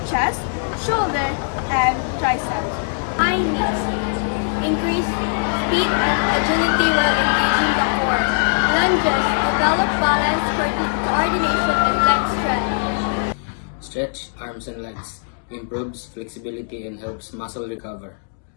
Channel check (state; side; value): silent; right; digital silence